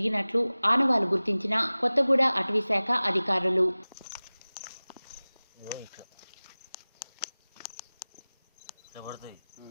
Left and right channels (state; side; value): inverted; both; correlation -0.99